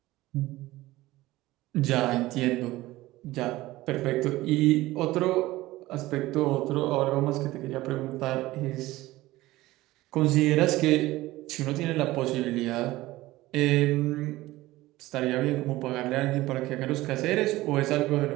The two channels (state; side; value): quieter; left; 17.8 dB